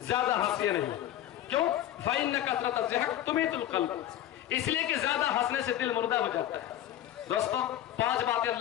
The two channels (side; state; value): right; quieter; 12.4 dB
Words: ज्यादा हंसिए नहीं, क्यों, फ़इन्न कसरत ज़हक तुमीतुल क़ल्ब, इसलिए कि ज्यादा हंसने से दिल मुर्दा हो जाता है। दोस्तों 5 बातें